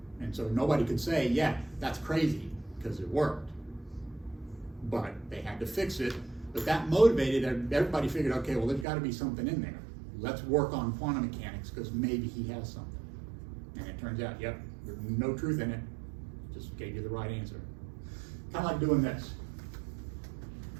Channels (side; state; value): left; drops out; at 8.8 s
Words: And so nobody could say, yeah, that's crazy, because it worked. But they had to fix it. But that motivated everybody. Figured, okay, well, there's got to be something in there. Let's work on quantum mechanics, because maybe he has something. And it turns out, yep, there's no truth in it. Just gave you the right answer. Kind of like doing this.